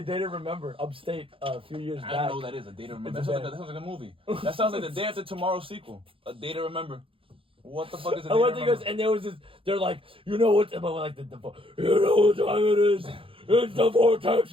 Day to Remember upstate a few years back. I don't know what that is. A Day to Remember. That sounds like a movie. That sounds like the Day After Tomorrow sequel. A Day to Remember. What the fuck is a Day to Remember? And there was this. They're like, you know what? You know what time it is? It's the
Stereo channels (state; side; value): late; left; 0.26 ms